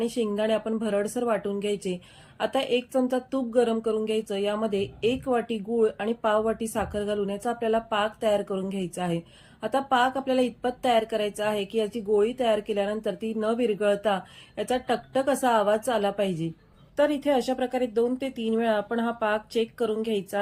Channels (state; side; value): identical; both; correlation 1.00